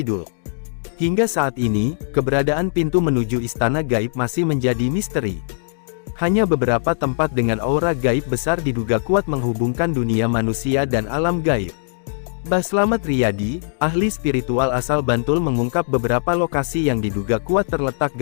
Hingga saat ini, keberadaan pintu menuju Istana Gaib masih menjadi misteri. Hanya beberapa tempat dengan aura gaib besar diduga kuat menghubungkan dunia manusia dan alam gaib. Mbah Slamet Riyadi, ahli spiritual asal Bantul mengungkap beberapa lokasi yang diduga kuat terletak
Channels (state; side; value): silent; right; digital silence